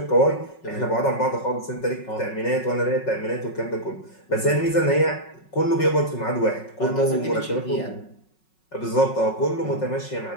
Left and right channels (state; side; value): late; right; 5.4 ms